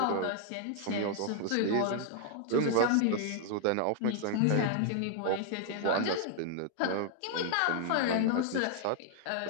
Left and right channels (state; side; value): different; both; correlation -0.01